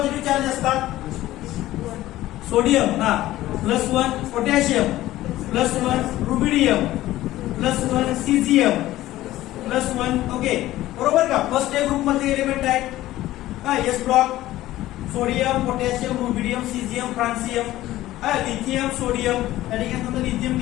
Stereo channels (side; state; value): right; quieter; 15.5 dB